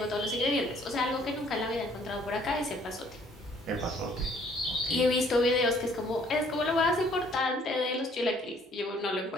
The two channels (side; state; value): both; normal; correlation 0.61